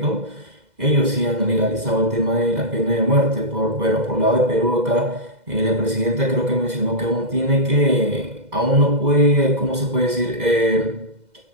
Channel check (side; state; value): left; late; 2.0 ms